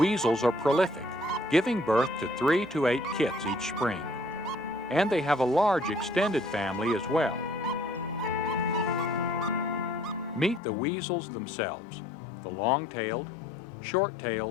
are prolific, giving birth to 3 to 8 kits each spring. And they have a large extended family as well. Meet the weasels themselves, the long-tailed,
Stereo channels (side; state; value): right; drops out; at 10.6 s